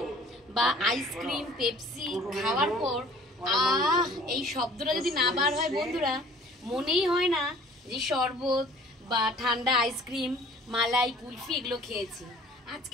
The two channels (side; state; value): both; normal; correlation 0.52